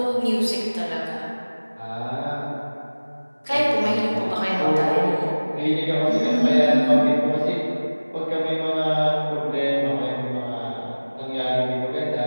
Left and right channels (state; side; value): inverted; both; correlation -1.00